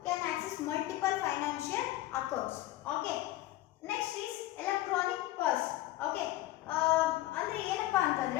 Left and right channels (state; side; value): quieter; right; 16.0 dB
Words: multiple financial accounts. Okay, next is electronic purse. Okay, ಅಂದ್ರೆ ಏನಪ್ಪಾ